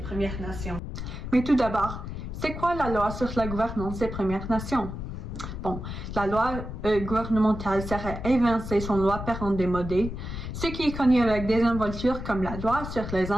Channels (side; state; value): left; noise; rumble, 7 dB below the sound